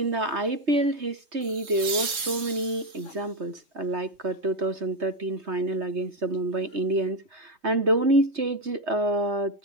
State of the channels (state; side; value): late; left; 3.7 ms